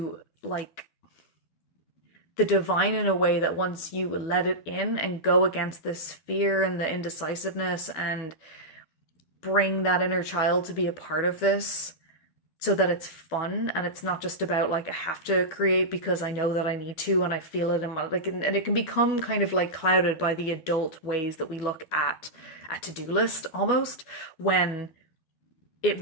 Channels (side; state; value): right; late; 12 ms